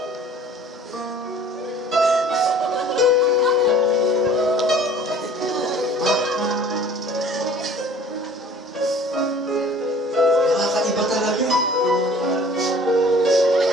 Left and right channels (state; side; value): normal; both; correlation 0.49